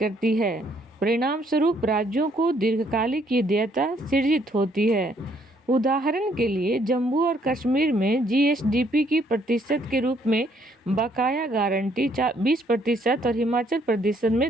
है। परिणाम स्वरूप राज्यों को दीर्घकालिक देयता सृजित होती है। उदाहरण के लिए जम्मू और कश्मीर में GSDP की प्रतिशत के रूप में बकाया गारंटी 20% और हिमाचल प्रदेश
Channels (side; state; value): both; normal; correlation 0.68